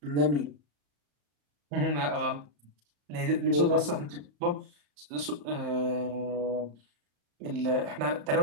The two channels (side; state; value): left; late; 34 ms